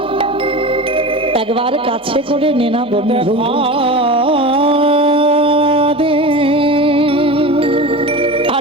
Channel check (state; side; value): normal; both; correlation 0.30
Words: একবার কাছে করে নে না বন্ধু।